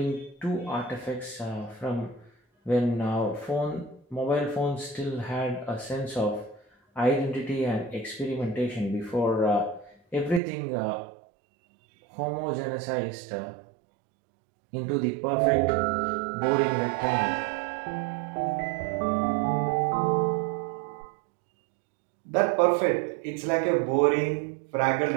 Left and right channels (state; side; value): drops out; left; at 10.4 s